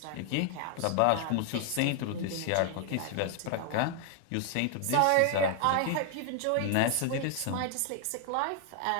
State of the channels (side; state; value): both; different; correlation 0.00